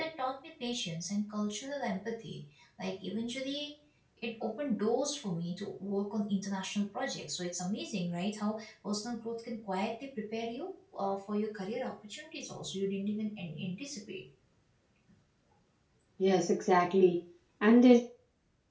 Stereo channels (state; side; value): identical; both; correlation 1.00